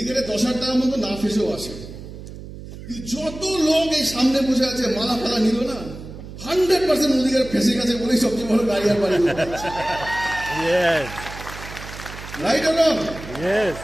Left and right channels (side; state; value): right; noise; hum, 13 dB below the sound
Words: 10,000 টাকার মতো না ফেসেও আসে। যত লোক এই সামনে বসে আছে মালা ফালা নিল না, 100% মোদিকার ফেসে গেছে বলেই সবচেয়ে বড় গাড়ি আর বাড়ি। Right or wrong?